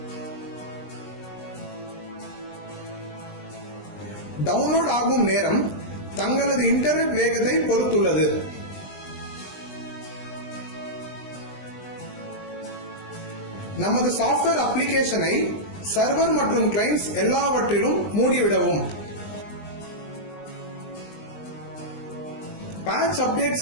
டவுன்லோட் ஆகும் நேரம் தங்களது இன்டர்நெட் வேகத்தை பொறுத்துள்ளது. நமது சாஃப்ட்வேர் அப்ளிகேஷனை சர்வர் மற்றும் கிளைண்ட்ஸ் எல்லாவற்றிலும் மூடிவிடவும். பேட்ச் அப்டேட்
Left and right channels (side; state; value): right; late; 20 ms